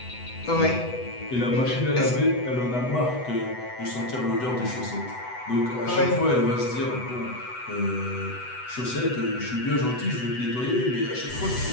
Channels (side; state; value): right; late; 8.0 ms